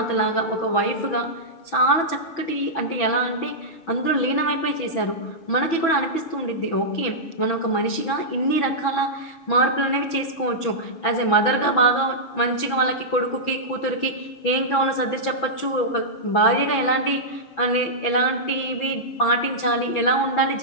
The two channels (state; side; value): late; right; 6.1 ms